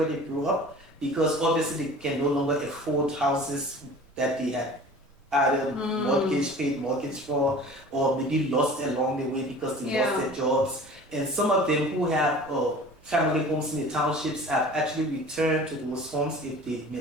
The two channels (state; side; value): normal; both; correlation 0.42